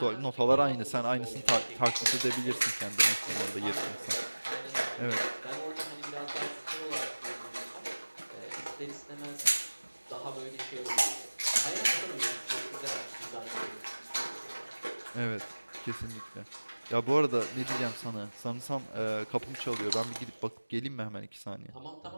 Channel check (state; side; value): inverted; both; correlation -1.00